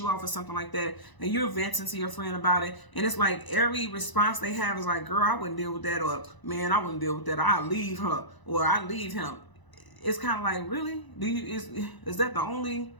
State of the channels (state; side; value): late; right; 1.0 ms